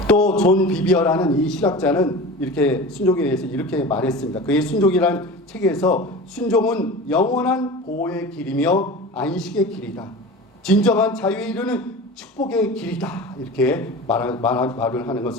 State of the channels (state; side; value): normal; both; correlation 0.33